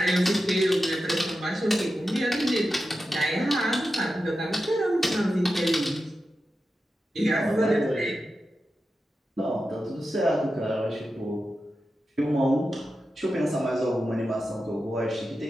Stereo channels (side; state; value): both; normal; correlation 0.91